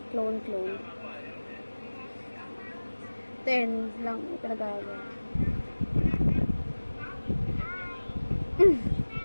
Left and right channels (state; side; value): inverted; both; correlation -1.00